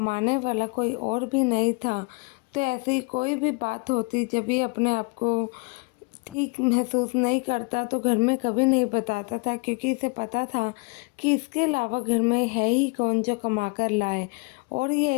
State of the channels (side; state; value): right; quieter; 30.6 dB